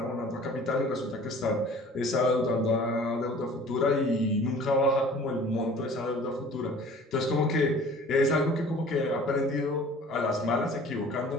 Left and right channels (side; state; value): both; normal; correlation 0.48